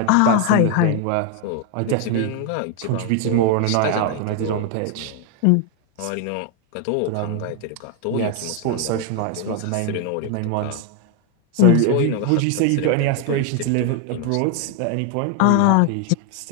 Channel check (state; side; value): different; both; correlation 0.01